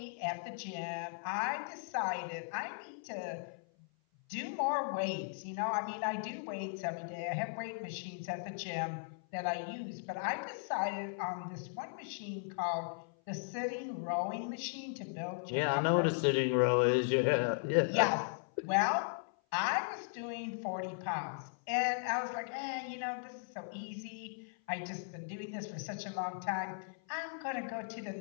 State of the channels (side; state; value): right; silent; 53 dB below the other